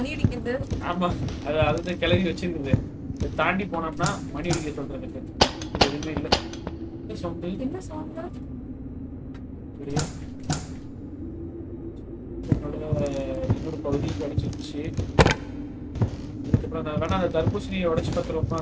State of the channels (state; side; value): identical; both; correlation 1.00